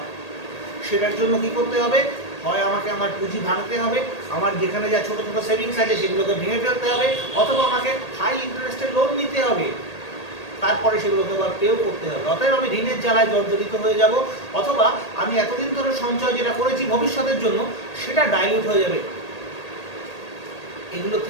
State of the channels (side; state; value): right; late; 1.8 ms